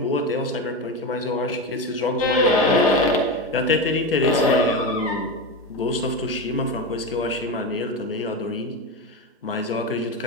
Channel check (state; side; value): normal; both; correlation 0.18